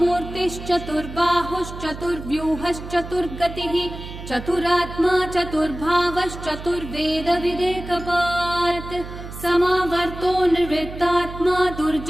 चतुरात्मा चतुर्भावश्चतुर्वेदविदेकपात् समावर्तो निर्वृत्तात्मा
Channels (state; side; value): noise; right; hum, 11 dB below the sound